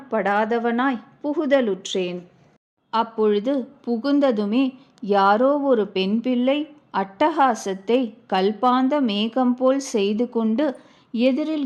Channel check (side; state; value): both; identical; correlation 1.00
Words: புகுதலுற்றேன். அப்பொழுது புகுந்ததுமே யாரோ ஒரு பெண் பிள்ளை அட்டகாசத்தை கல்பாந்த மேகம் போல் செய்து கொண்டு